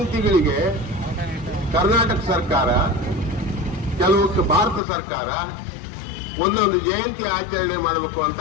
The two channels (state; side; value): drops out; right; at 4.8 s